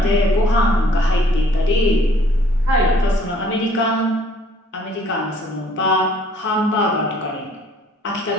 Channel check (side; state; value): both; normal; correlation 0.59